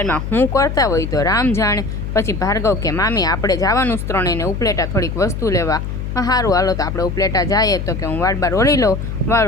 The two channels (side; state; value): left; noise; hum, 5 dB below the sound